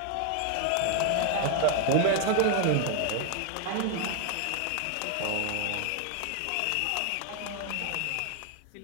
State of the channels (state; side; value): different; both; correlation 0.01